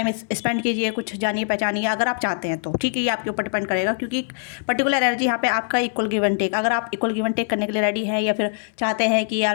स्पेंड कीजिए, कुछ जानिए पहचानिए, अगर आप चाहते हैं तो, ठीक है। ये आपके ऊपर डिपेंड करेगा, क्योंकि पर्टिकुलर एनर्जी यहाँ पे आपका इक्वल गिव एंड टेक, अगर आप इक्वल गिव एंड टेक करने के लिए रेडी हैं, या फिर चाहते हैं कि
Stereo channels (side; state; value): right; silent; 63 dB below the other